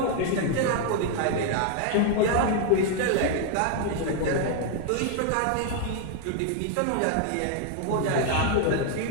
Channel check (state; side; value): different; both; correlation 0.00